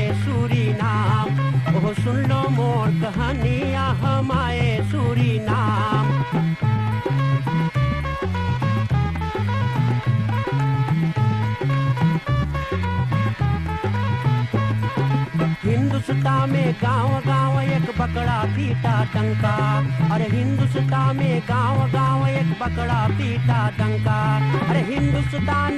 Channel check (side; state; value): both; identical; correlation 1.00